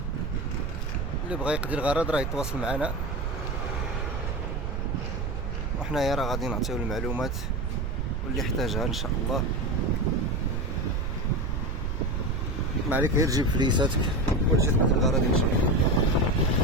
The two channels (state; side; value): noise; right; rumble, 2 dB below the sound